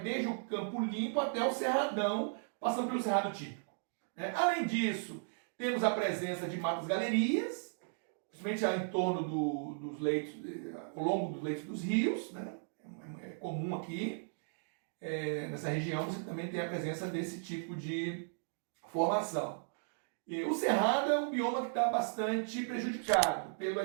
desde o campo limpo até o cerradão, passando pelo cerrado típico. Além disso, temos a presença de matas galerias, principalmente em torno dos leitos, ao longo dos leitos dos rios, né? É comum aqui. Nessa região você também tem a presença desse tipo de formação. E o cerrado é um bioma que está bastante prejudicado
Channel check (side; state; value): left; silent; digital silence